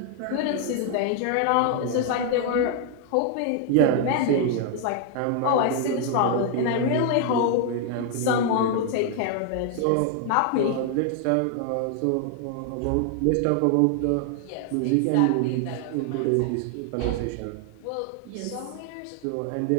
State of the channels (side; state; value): both; different; correlation 0.00